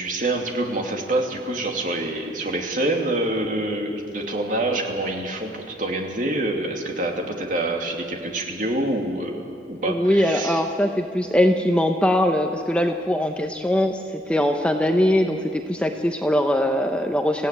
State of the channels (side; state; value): both; normal; correlation 0.69